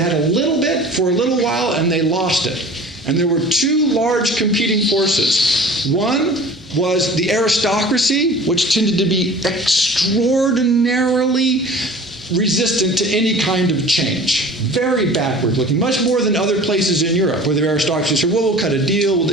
had a little bit for a little while, and they lost it. And there were two large competing forces. One was the aristocracy, which tended to be extraordinarily resistant to any kind of change. Very backward looking, much more than other places in Europe where the aristocracy said, well, we'll cut a deal.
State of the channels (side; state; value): both; normal; correlation 0.43